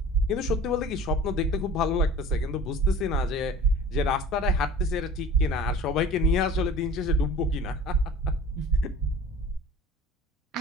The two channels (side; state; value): both; normal; correlation 0.42